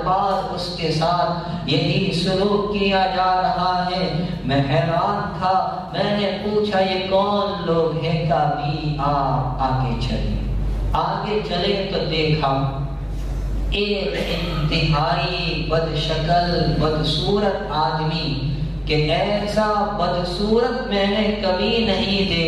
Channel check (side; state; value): both; identical; correlation 1.00